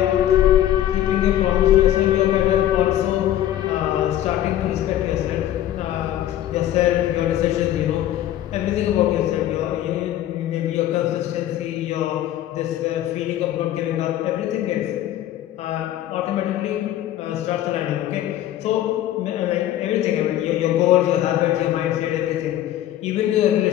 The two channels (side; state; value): right; quieter; 12.6 dB